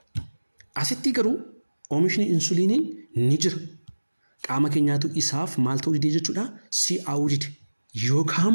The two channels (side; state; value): both; inverted; correlation -1.00